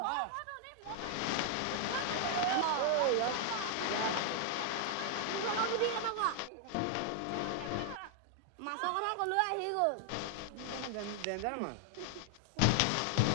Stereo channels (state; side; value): different; both; correlation 0.00